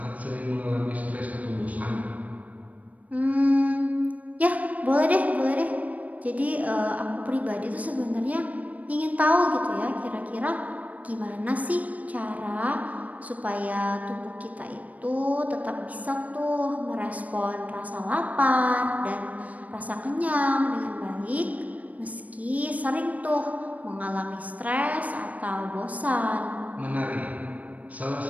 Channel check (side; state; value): left; late; 0.070 ms